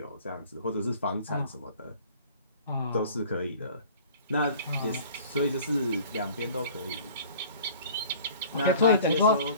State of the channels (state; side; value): inverted; both; correlation -0.47